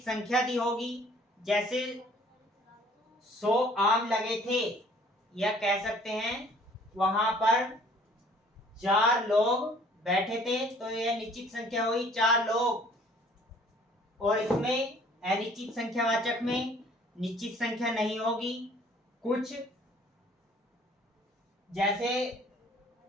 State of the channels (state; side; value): normal; both; correlation 0.56